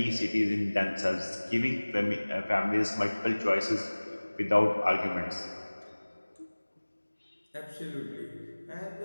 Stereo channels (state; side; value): inverted; both; correlation -1.00